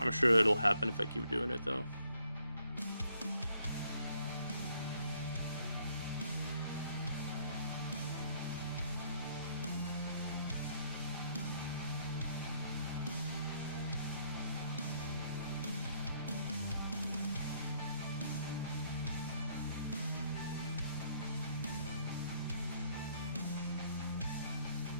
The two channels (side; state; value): both; inverted; correlation -0.68